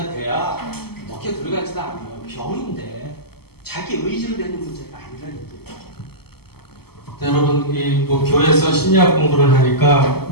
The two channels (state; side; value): late; right; 0.96 ms